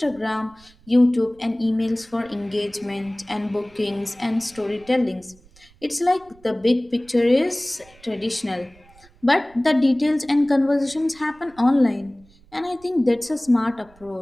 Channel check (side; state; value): right; noise; rumble, 28 dB below the sound